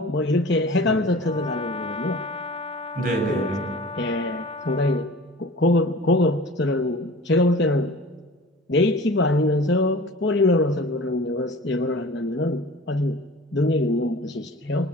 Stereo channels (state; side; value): normal; both; correlation 0.41